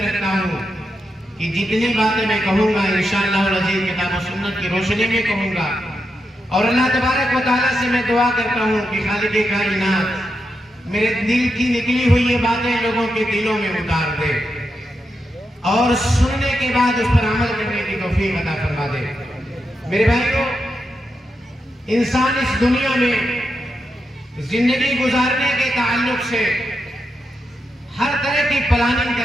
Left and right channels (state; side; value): normal; both; correlation 0.86